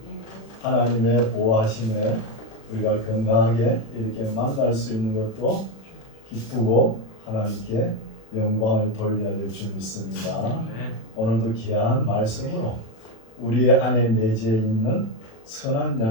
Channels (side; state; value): right; late; 36 ms